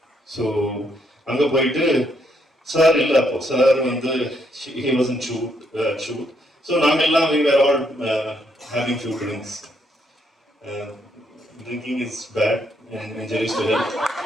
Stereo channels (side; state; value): both; normal; correlation 0.74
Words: ஸோ அங்கே போயிட்டு சார் இல்லை, அப்போ சார் வந்து he wasn't shoot. ஸோ நாங்கள் எல்லாம் we were all having few drinks. Drinking is bad and injuries to health.